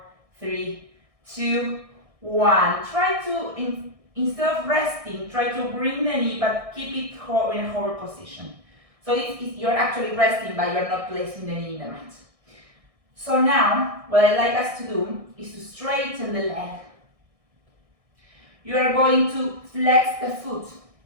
3, 2, 1. Try to, instead of resting, try to bring the knee, but keep it in a hover position. So you're actually resting, but you're not placing the knee in the mat. So now, what I'd like us to do is to straighten the leg. You are going to flex the foot.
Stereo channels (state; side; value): late; left; 1.6 ms